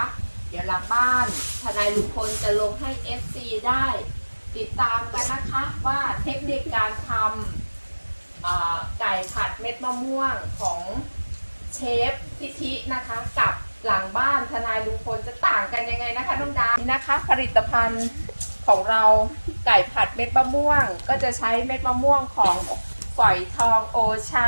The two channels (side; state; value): both; inverted; correlation -1.00